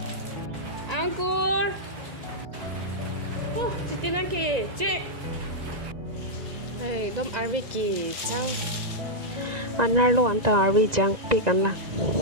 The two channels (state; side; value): late; left; 1.9 ms